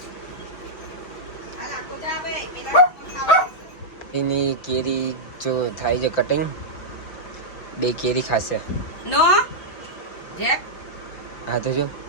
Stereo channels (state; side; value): late; right; 5.6 ms